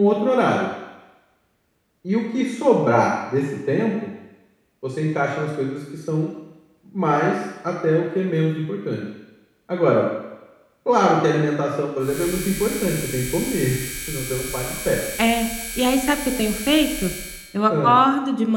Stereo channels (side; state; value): both; identical; correlation 1.00